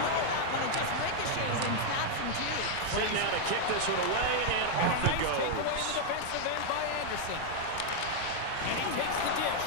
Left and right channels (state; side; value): different; both; correlation 0.00